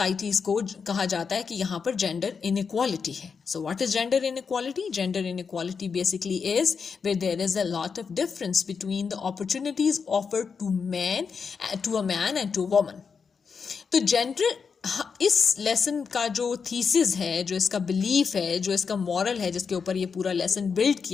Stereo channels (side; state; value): right; quieter; 5.8 dB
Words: کو کہا جاتا ہے کہ یہاں پر جینڈر انیکوالٹی ہے. So what is gender inequality? Gender inequality basically is where there is a lot of difference between the opportunities offered to a man and to a woman. تو جینڈر، اس lesson کا جو thesis ہے، جو اس کا belief ہے، جو اس کا مورل ہے، جس کے اوپر یہ پورا لیسن بلڈ